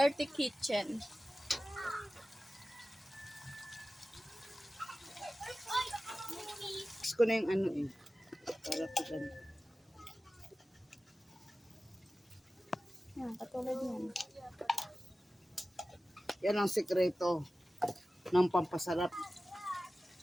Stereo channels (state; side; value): normal; both; correlation 0.95